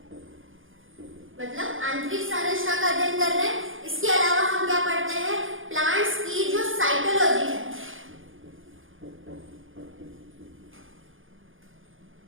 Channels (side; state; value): left; late; 0.58 ms